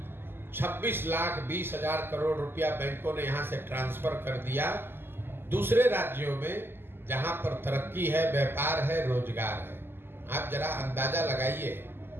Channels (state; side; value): late; left; 0.11 ms